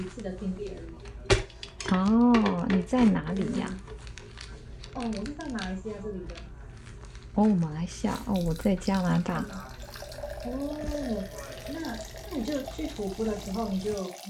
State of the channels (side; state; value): both; identical; correlation 1.00